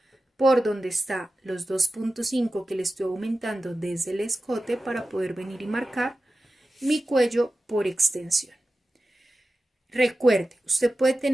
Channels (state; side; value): normal; both; correlation 0.94